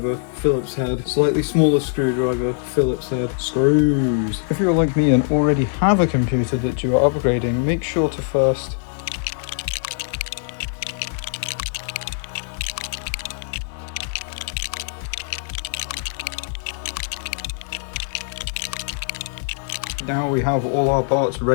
Phillips head, slightly smaller screwdriver, Phillips head, screws. If you're like me and already have a computer that you are upgrading, make sure to first now we have all our parts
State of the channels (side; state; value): right; silent; 64 dB below the other